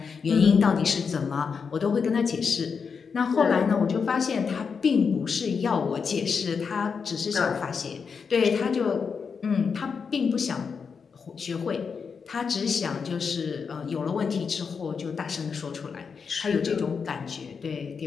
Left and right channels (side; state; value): right; quieter; 5.8 dB